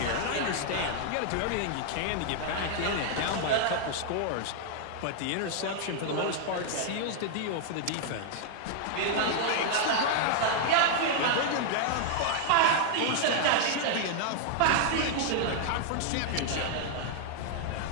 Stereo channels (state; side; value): different; both; correlation -0.01